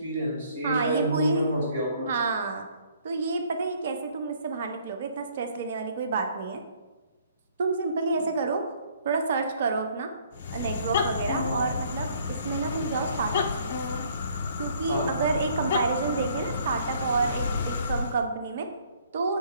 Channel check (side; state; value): both; inverted; correlation -0.61